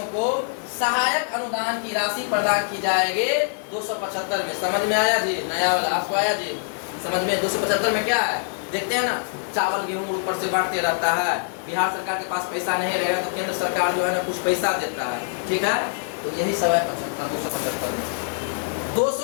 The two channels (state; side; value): silent; right; digital silence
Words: को सहायक अनुदान की राशि प्रदान की जाएगी 275 में। समझ में आया जी? नया वाला आपको आया जी समझ में? 275 में क्या है देखते हैं ना, चावल गेहूं ऊपर से बांटते रहता है, बिहार सरकार के पास पैसा नहीं रहेगा तो केंद्र सरकार जो है ना कुछ पैसा देता है, ठीक है। तो यही सब है 275 में।